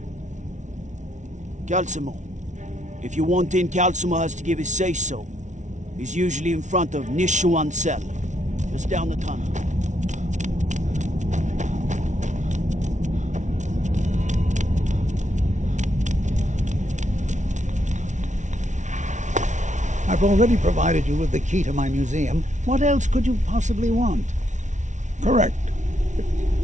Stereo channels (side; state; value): left; late; 0.36 ms